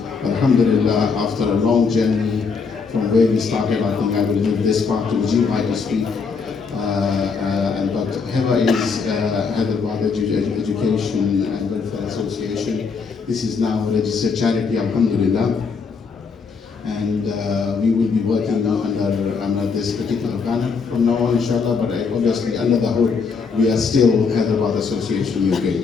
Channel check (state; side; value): quieter; right; 5.2 dB